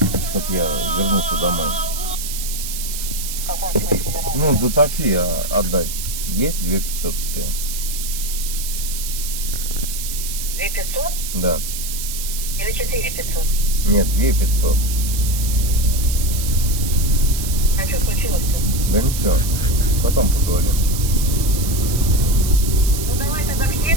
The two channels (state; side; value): noise; right; hiss, 6 dB below the sound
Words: чтоб я вернулся домой? В каком смысле вернулся? Ну, за такси отдать. Есть 2500 у тебя? 2500 Да. или 4500? Нет, 2500. А что случилось-то? Да ничего. Потом поговорим. Ну давай тогда к